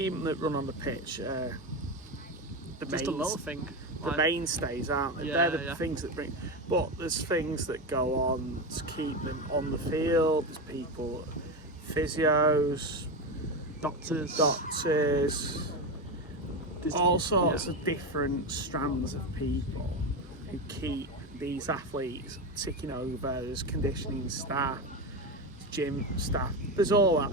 that run on the pitch, Just a little thing. The mainstays, aren't they? Yeah, They're the things that bring. But there's things that go on to keep them on the field. There's people, physios, Doctors. All sorts of different strands of people who keep these athletes ticking over. There's conditioning staff, gym staff. There's all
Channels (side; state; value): both; normal; correlation 0.16